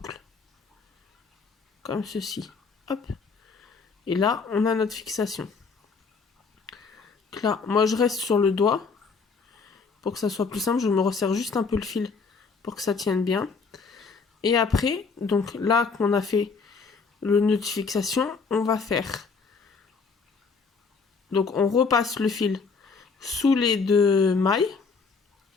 Comme ceci. Hop. Et là, on a notre fixation. Donc là, moi, je reste sur le doigt. Pour que ça soit plus simple, je me resserre juste un peu le fil pour que ça tienne bien. Et après, donc là qu'on a fait le nœud de fixation, on va faire... Donc on repasse le fil sous les deux mailles.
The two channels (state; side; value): quieter; right; 4.9 dB